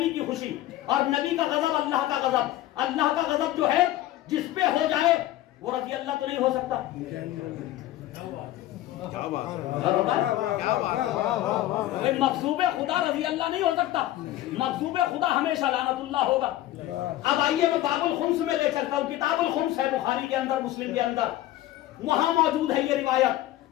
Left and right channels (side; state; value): right; quieter; 14.6 dB